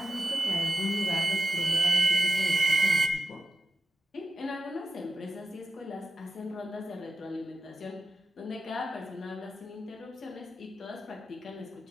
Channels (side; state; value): both; normal; correlation 0.91